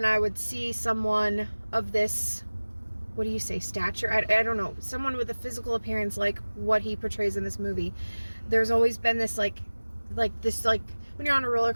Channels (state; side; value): inverted; both; correlation -1.00